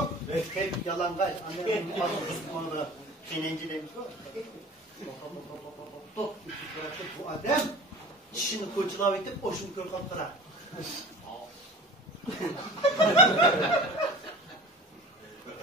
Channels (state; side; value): normal; both; correlation 0.40